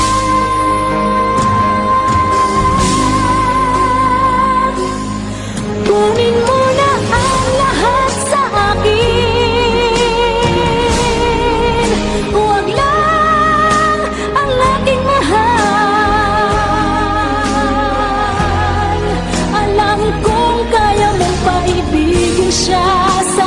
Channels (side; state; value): both; identical; correlation 1.00